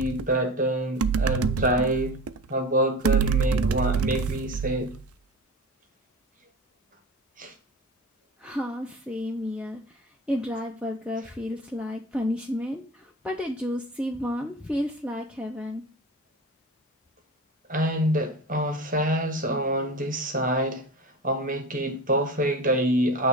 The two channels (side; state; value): both; normal; correlation 0.33